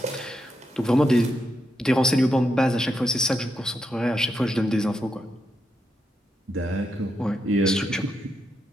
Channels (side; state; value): both; normal; correlation 0.83